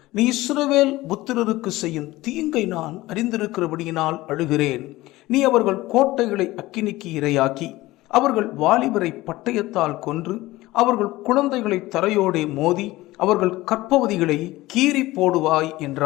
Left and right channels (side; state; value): right; quieter; 18.3 dB